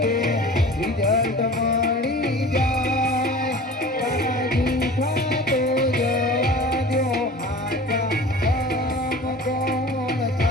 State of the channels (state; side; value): normal; both; correlation 0.40